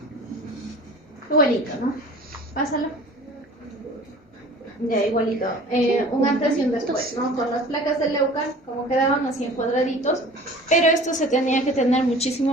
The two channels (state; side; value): normal; both; correlation 0.44